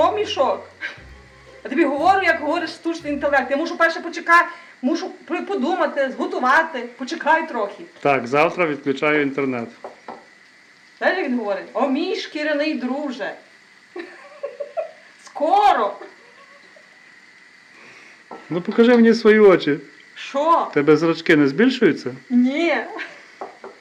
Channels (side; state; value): both; identical; correlation 1.00